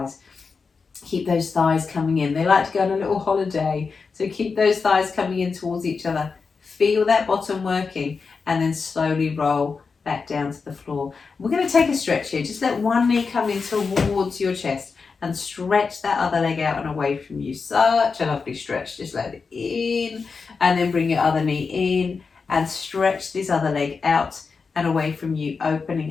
Keep those thighs coming in. They like to go on a little holiday. So keep those thighs coming in towards each other. Feel that bottom working, and then slowly roll back down to the floor. We're going to take a stretch here. Just let one knee come in towards your chest and stretch that other leg out and away from you. Such a lovely stretch. Just let it in, and then bring your other knee in and stretch this other leg out and away from you,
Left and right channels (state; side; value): quieter; right; 5.0 dB